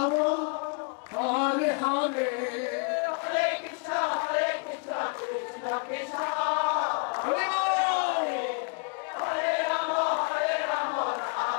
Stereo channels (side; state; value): right; quieter; 39.6 dB